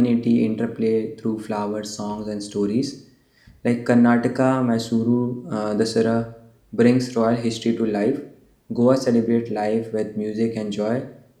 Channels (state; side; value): identical; both; correlation 1.00